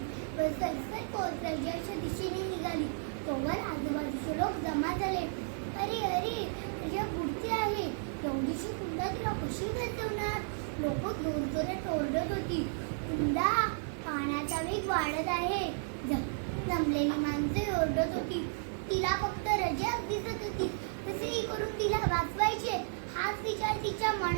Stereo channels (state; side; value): silent; left; 56 dB below the other